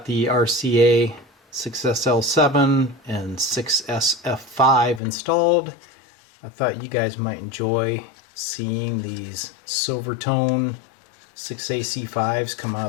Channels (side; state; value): right; drops out; at 5.0 s